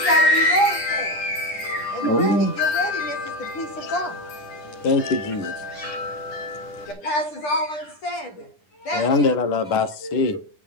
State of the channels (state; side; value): late; right; 10 ms